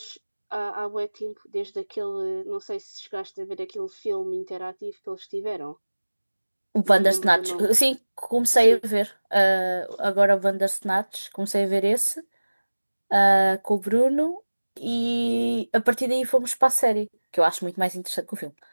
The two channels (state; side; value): inverted; both; correlation -1.00